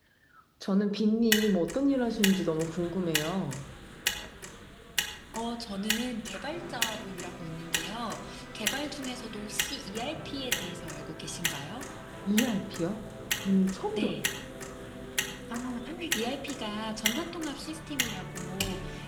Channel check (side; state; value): both; identical; correlation 1.00